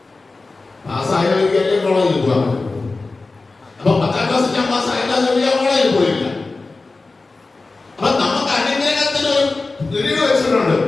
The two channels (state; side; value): quieter; right; 3.6 dB